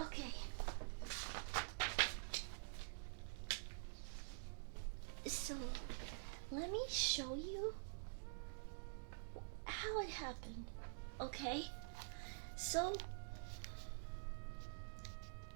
Okay. So, let me show you how it happened, okay? So,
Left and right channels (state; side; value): silent; left; digital silence